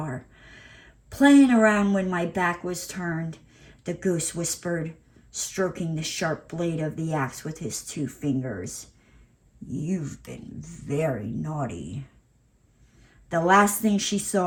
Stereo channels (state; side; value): identical; both; correlation 1.00